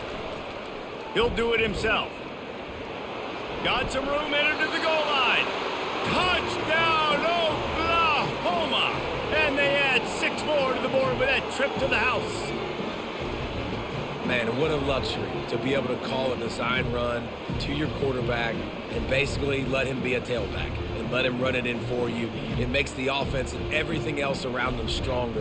He'll do it himself. Got some room, headed to the goal line. Touchdown, Oklahoma! And they add 6 more to the board with that trip to the house. Man, what a luxury to be able to call a design run to your quarterback and basically let him be a tailback and let him run it in for you. It makes the offense and everything else around them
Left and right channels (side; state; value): both; identical; correlation 1.00